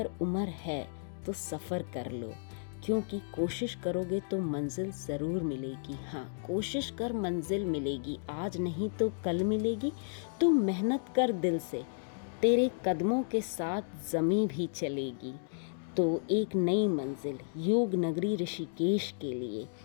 उम्र है तो सफ़र कर लो, क्योंकि कोशिश करोगे तो मंजिल ज़रूर मिलेगी। हाँ, कोशिश कर मंजिल मिलेगी, आज नहीं तो कल मिलेगी। तू मेहनत कर दिल से, तेरे कदमों के साथ ज़मीं भी चलेगी। तो एक नई मंजिल योग नगरी ऋषिकेश के लिए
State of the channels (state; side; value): silent; right; digital silence